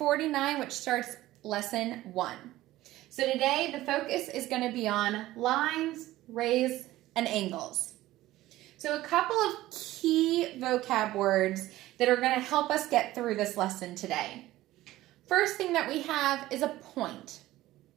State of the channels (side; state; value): left; quieter; 16.1 dB